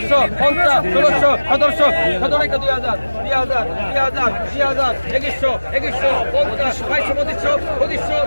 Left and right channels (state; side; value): inverted; both; correlation -1.00